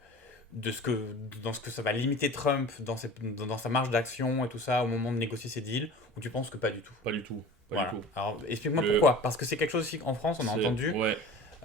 dans ce que ça va limiter Trump dans sa marge d'action et tout ça au moment de négocier ses deals, ou tu penses que pas du tout? Pas du tout. Voilà. Alors explique-moi pourquoi. Parce que c'est quelque chose aussi qu'en France on a entendu. Ouais.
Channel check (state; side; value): normal; both; correlation 0.40